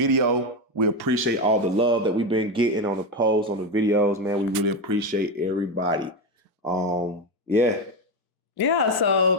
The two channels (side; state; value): both; normal; correlation 0.13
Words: We appreciate all the love that we've been getting on the posts, on the videos, man. We really appreciate everybody. Yeah,